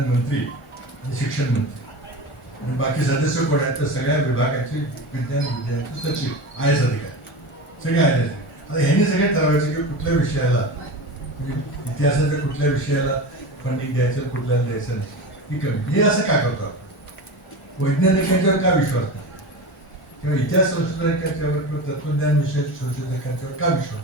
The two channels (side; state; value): both; normal; correlation 0.28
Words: मंत्री आणि शिक्षण मंत्री आणि बाकी सदस्य कोण आहेत तर सगळ्या विभागाचे विज्ञान विद्यार्थी सचिव IAS अधिकारी सगळे IAS. आता ह्यांनी सगळे ठरवायचे की कुठल्या विषयाला म्हणजे इतिहासाच्या कुठल्या विषयाला फंडिंग द्यायचं कुठल्याला द्यायचं नाही ही कमी. हे असं का करतो आपण वैज्ञानिकांच्यावर का विश्वास नाही किंवा इतिहास संशोधकांच्यावर किंवा तत्वज्ञान विषयक संशोधकांच्यावर का विश्वास